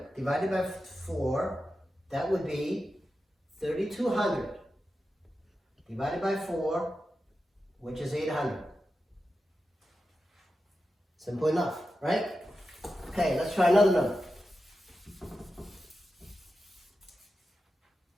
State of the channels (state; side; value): normal; both; correlation 0.91